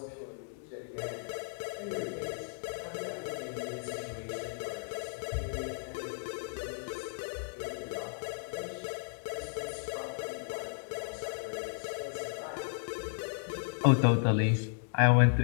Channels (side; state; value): right; silent; digital silence